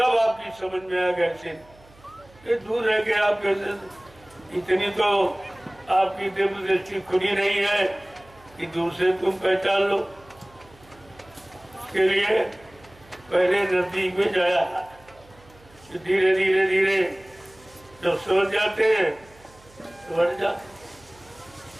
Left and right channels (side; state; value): right; noise; hum, 27 dB below the sound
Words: आपकी समझ में आ गया ये दूर रह के आप कैसे, इतनी तो आपकी दिव्य दृष्टि खुली नहीं है कि दूर से तुम पहचान लो। इसके लिए पहले नजदीक में जाया, धीरे धीरे धीरे जब समझ जाते हैं तो बढ़